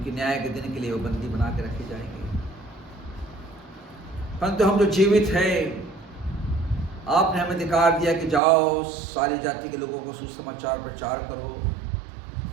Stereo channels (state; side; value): drops out; left; at 8.4 s